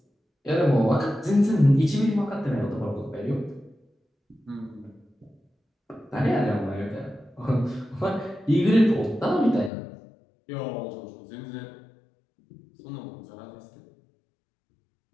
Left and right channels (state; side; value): drops out; right; at 9.7 s